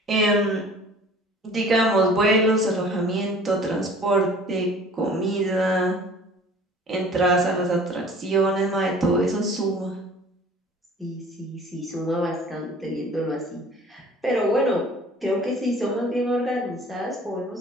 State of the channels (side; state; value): both; normal; correlation 0.48